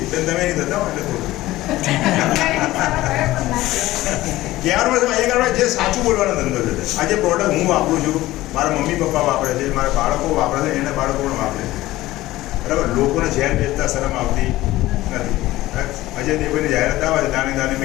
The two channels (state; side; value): quieter; right; 16.9 dB